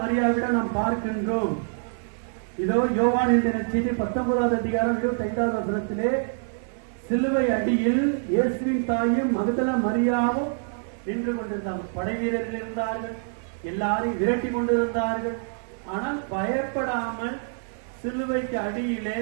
மரியாவிடம் நாம் பார்க்கின்றோம். இதோ யோவான் எழுதின செய்தி 19வது அதிகாரம் 25வது வசனத்திலே சிலுவை அடியில் இயேசுவின் தாயும் மகதல மரியாவும் நின்று கொண்டிருந்தார்கள். படை வீரர்கள் இருந்தார்கள், எல்லாரையும் விரட்டி கொண்டிருந்தார்கள். ஆனால் பயப்படாமல் சிலுவைக்கு அடியிலே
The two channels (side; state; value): left; silent; 61 dB below the other